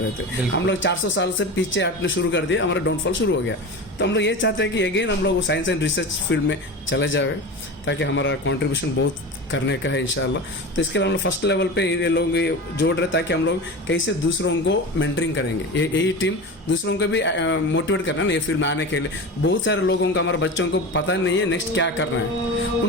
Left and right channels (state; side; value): normal; both; correlation 0.28